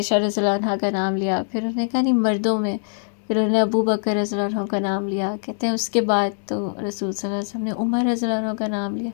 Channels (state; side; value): silent; right; 64 dB below the other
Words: رضی اللہ عنہا کا نام لیا، پھر انہوں نے کہا نہیں مردوں میں، پھر انہوں نے ابو بکر رضی اللہ عنہ کا نام لیا. کہتے ہیں اس کے بعد تو رسول صلی اللہ علیہ وسلم نے عمر رضی اللہ عنہ کا نام لیا.